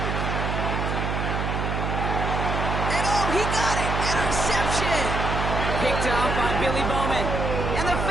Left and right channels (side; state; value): right; noise; hum, 1 dB below the sound